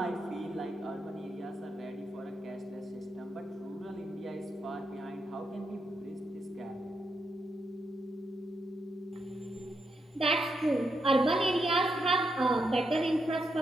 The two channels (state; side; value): normal; both; correlation 0.82